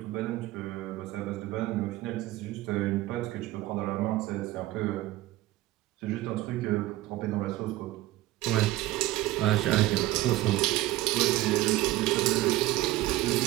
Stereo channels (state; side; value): quieter; left; 16.7 dB